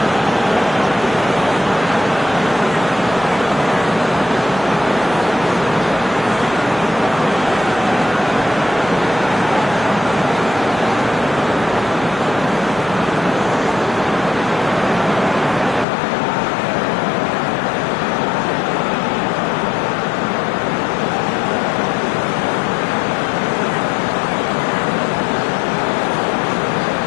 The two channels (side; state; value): right; drops out; at 15.9 s